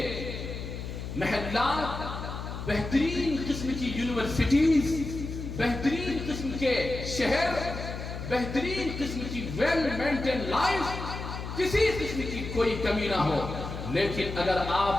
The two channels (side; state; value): left; noise; hum, 7 dB below the sound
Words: محلات، بہترین قسم کی یونیورسٹیز، بہترین قسم کے شہر، بہترین قسم کی ویل مینٹین لائف، کسی قسم کی کوئی کمی نہ ہو، لیکن اگر